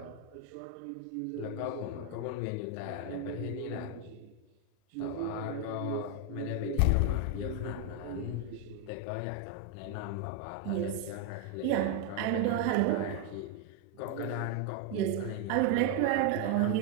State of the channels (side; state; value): both; different; correlation 0.01